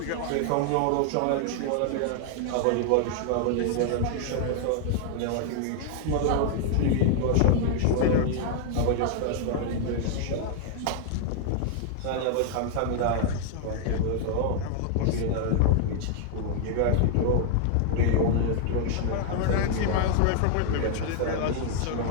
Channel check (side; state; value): both; different; correlation 0.00